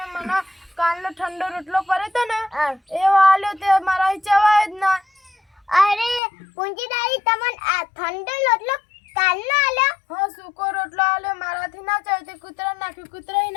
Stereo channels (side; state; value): right; drops out; at 6.2 s